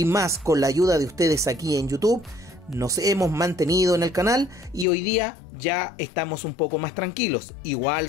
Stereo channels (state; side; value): drops out; right; at 4.9 s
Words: más con la ayuda de ustedes aquí en YouTube, nos hemos mantenido en el canal y hoy día ya estamos un poco más tranquilos. Igual